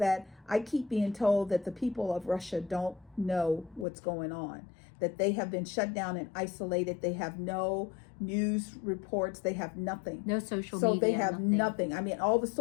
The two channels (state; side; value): drops out; right; at 3.9 s